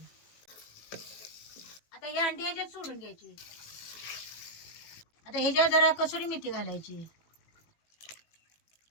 आता ही अंडी ह्याच्यात सोडून घ्यायची. आता ह्याच्यात जरा कसुरी मेथी घालायची.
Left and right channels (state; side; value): late; right; 18 ms